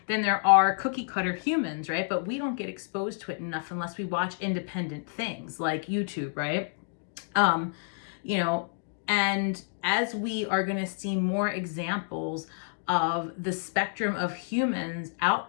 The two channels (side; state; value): right; silent; digital silence